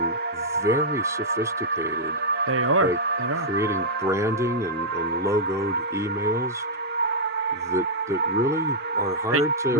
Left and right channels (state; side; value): normal; both; correlation -0.07